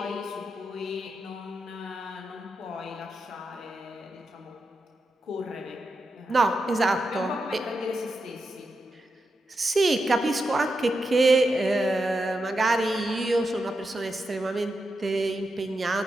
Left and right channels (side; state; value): both; normal; correlation 0.87